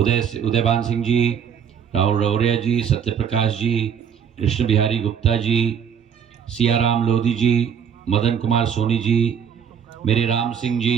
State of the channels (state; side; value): quieter; left; 7.9 dB